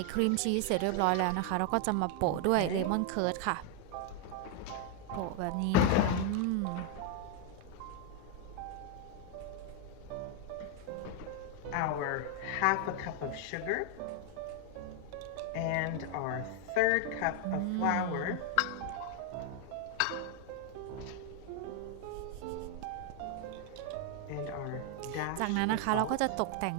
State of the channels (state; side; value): different; both; correlation 0.01